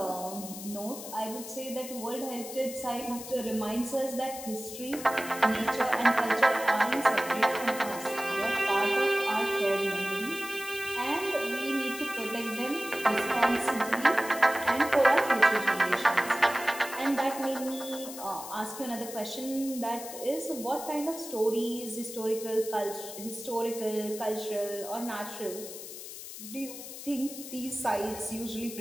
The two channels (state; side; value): noise; left; hiss, 11 dB below the sound